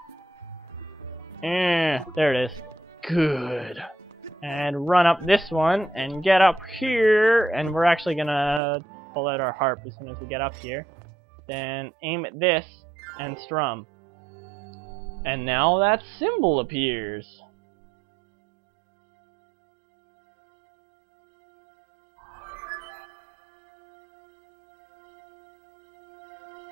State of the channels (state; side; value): drops out; left; at 8.6 s